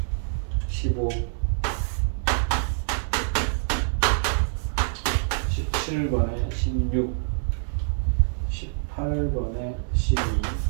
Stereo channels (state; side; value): silent; left; digital silence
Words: 15, 17번에 16, 18번에 12,